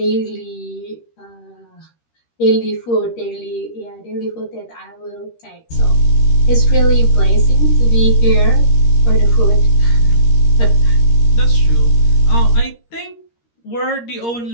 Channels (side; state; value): right; late; 13 ms